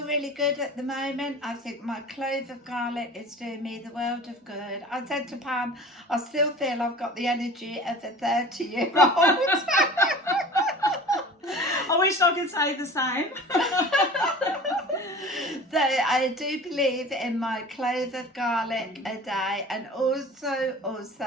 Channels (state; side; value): normal; both; correlation 0.40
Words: really good at the moment. I think my clove of garlic is doing me the world of good. I said to Pam, I still feel I've got the energy of a 30-year-old. I wish I could say the same. So I do believe in my clove of garlic a day, and also